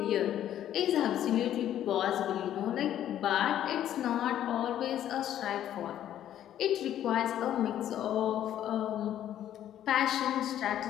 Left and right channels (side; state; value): right; quieter; 11.3 dB